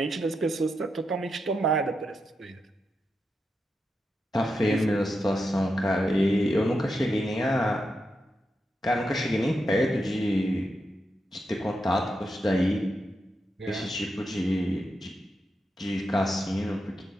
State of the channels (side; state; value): both; normal; correlation 0.86